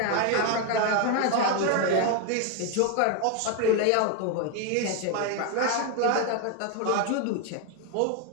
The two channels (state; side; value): different; both; correlation 0.01